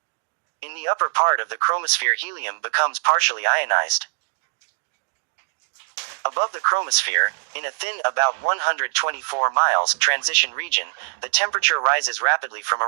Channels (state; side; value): silent; left; digital silence